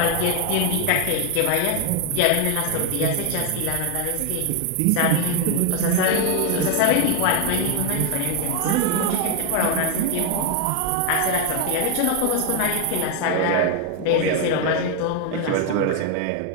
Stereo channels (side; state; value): both; different; correlation 0.00